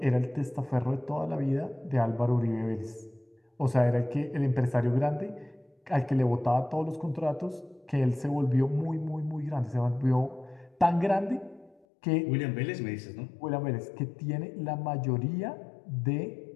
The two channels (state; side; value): drops out; right; at 11.8 s